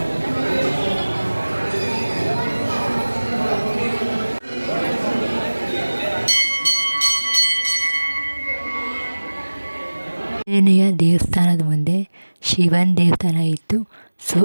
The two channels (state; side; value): inverted; both; correlation -1.00